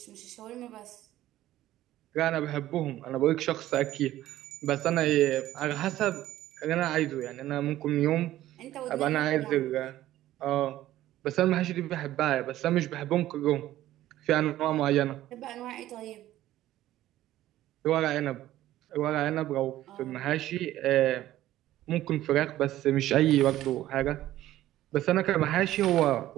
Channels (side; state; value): left; quieter; 14.3 dB